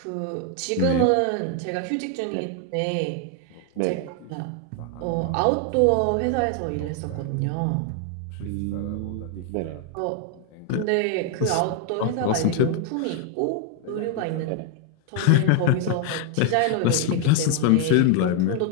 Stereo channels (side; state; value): both; different; correlation 0.00